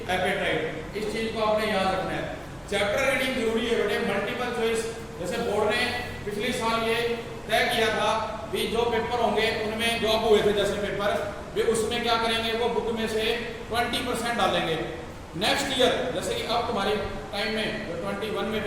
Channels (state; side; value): identical; both; correlation 1.00